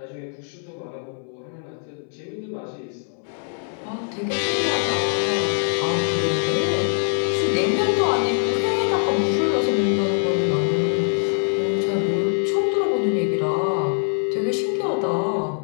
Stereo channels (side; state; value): right; silent; 63 dB below the other